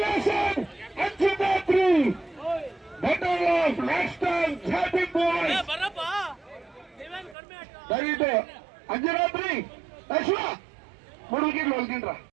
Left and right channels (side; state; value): left; drops out; at 7.4 s